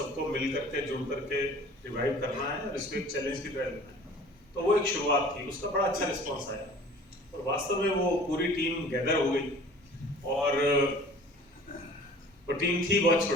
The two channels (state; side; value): normal; both; correlation 0.47